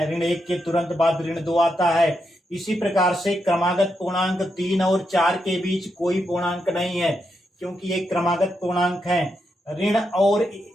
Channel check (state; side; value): normal; both; correlation 0.83